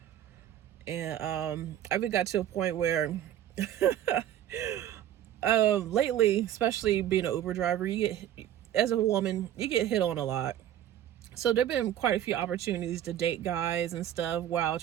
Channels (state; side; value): quieter; left; 11.3 dB